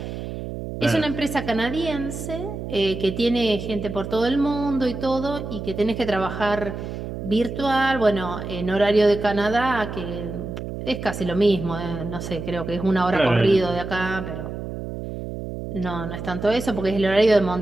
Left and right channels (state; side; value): noise; right; hum, 7 dB below the sound